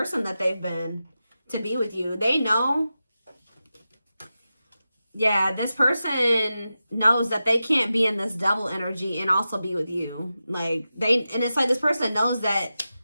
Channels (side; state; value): both; inverted; correlation -0.92